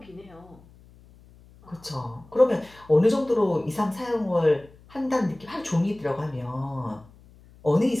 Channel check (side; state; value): left; noise; hum, 25 dB below the sound